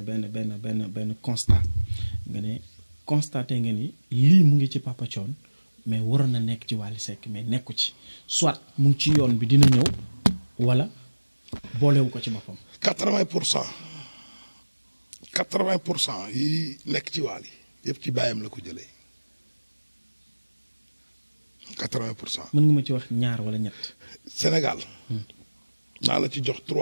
constat nga ne constaté nga ni lii mu ngi ci Papa Thione mais waroon na nekk ci Wally Seck mais nekku ci soit mu ngi ci yoon bi dina ñëw wala boolewu ko ci boppam 80% yi nekk ci Wally yëpp ci baayam la ko jëlee 80%. mën nga ma ci wax ñaar wala ñett. Sénégal. naa la ci jox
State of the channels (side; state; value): both; inverted; correlation -1.00